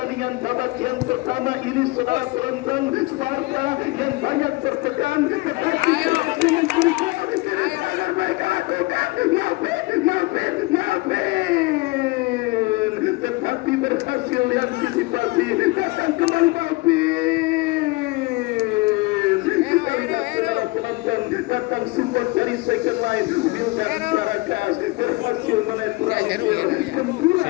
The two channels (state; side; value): quieter; right; 23.2 dB